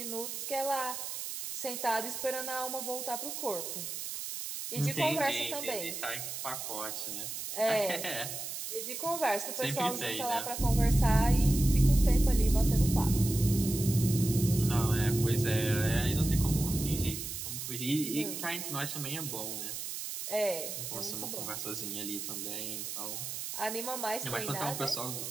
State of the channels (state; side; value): noise; right; hiss, 6 dB below the sound